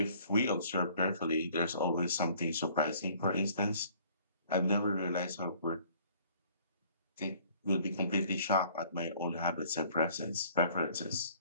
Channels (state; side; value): inverted; both; correlation -0.56